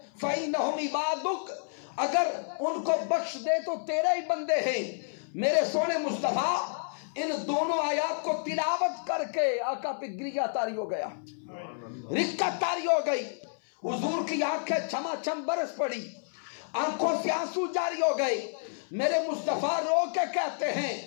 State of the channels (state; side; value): silent; right; 58 dB below the other